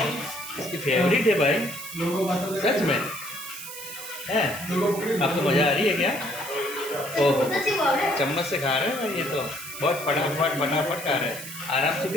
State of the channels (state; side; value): noise; right; hiss, 10 dB below the sound